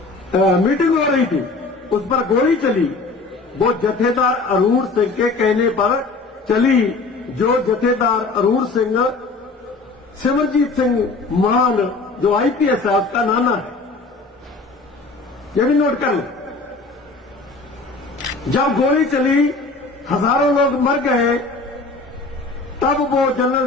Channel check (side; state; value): right; quieter; 3.7 dB